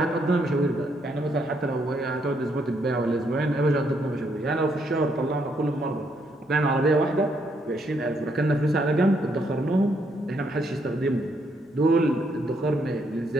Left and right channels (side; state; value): both; normal; correlation 0.74